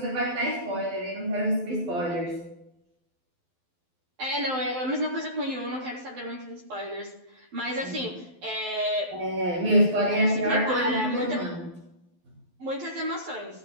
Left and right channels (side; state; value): left; late; 12 ms